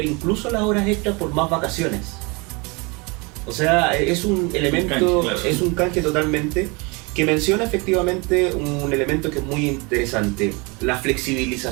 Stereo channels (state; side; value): quieter; left; 28.6 dB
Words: incluso las horas extras por más vacaciones. O sea, es un elemento, es un canje totalmente, que menciona efectivamente un elemento que es muy interesante: la